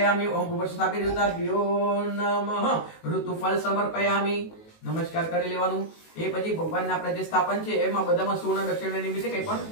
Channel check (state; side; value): late; right; 19 ms